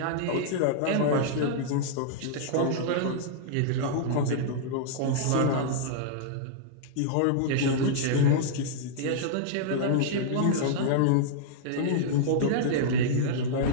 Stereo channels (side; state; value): both; different; correlation -0.02